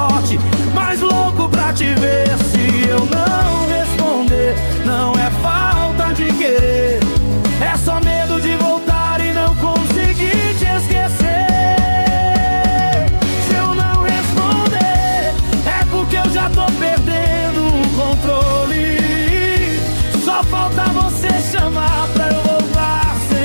mas louco pra te ver. Se eu não responder, não é falta de querer, é só medo de voltar e não conseguir te esquecer. Se eu não responder, é porque eu já tô perdendo o controle. Só falta você chamar pra eu voltar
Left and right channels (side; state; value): both; inverted; correlation -1.00